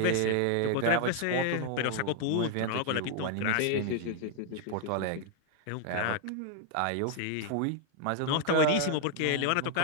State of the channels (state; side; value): different; both; correlation 0.00